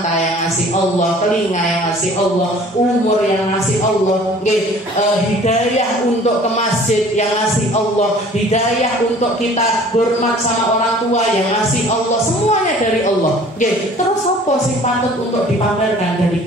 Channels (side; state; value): both; normal; correlation 0.49